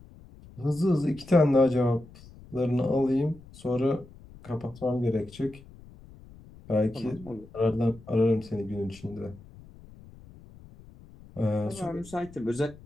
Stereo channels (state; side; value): noise; left; rumble, 21 dB below the sound